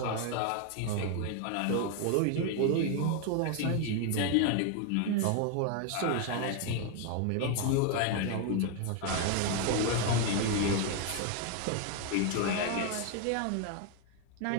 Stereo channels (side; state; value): both; different; correlation 0.01